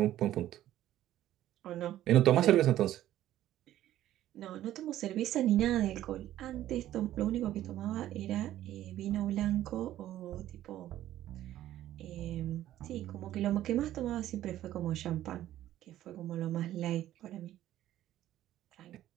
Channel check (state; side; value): quieter; left; 13.2 dB